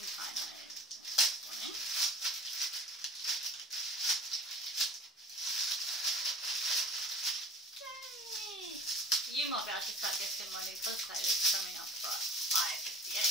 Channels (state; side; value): normal; both; correlation 0.43